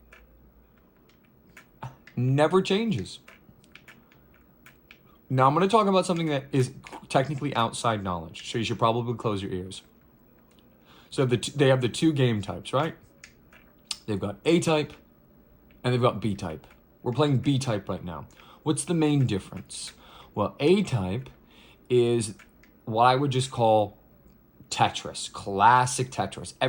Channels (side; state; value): both; identical; correlation 1.00